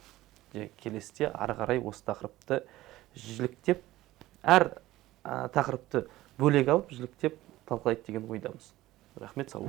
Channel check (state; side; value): quieter; left; 16.5 dB